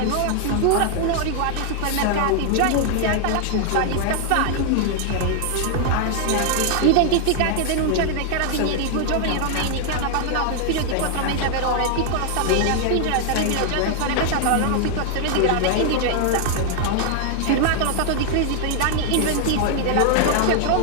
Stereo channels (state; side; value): different; both; correlation 0.00